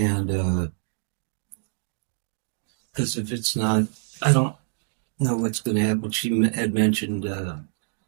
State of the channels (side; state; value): left; silent; digital silence